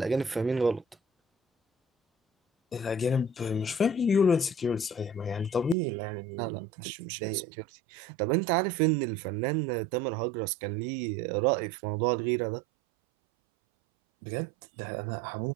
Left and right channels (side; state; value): left; drops out; at 5.8 s